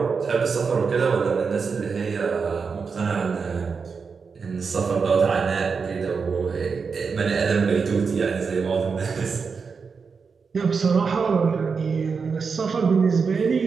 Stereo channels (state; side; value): quieter; left; 5.4 dB